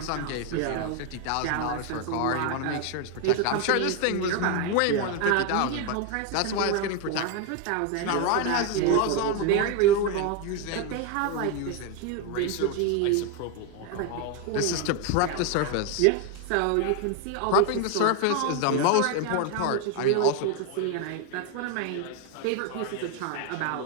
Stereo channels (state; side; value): different; both; correlation 0.01